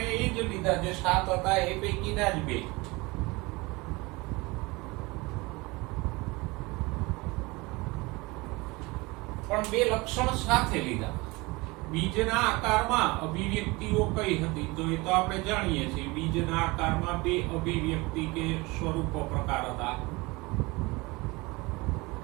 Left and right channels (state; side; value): quieter; left; 23.9 dB